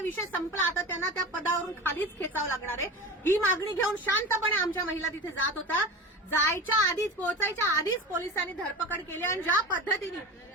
विषय संपला, आता त्यांना त्या पदावरून खालीच खेचावं लागणार आहे. ही मागणी घेऊन शांतपणे आमच्या महिला तिथे जात होता. जायच्या आधीच, पोहोचायच्या आधीच पोलिसांनी धरपकड केली आणि ज्या पद्धतीने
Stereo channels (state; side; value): normal; both; correlation 0.29